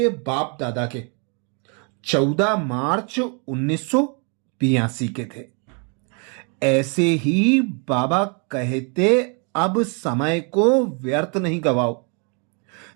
बाप दादा के 14 मार्च 1982 के थे। ऐसे ही बाबा कहते, अब समय को व्यर्थ नहीं गवाओ,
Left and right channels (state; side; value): quieter; left; 36.7 dB